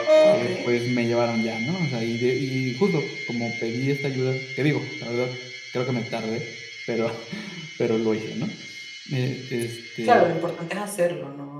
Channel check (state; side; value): identical; both; correlation 1.00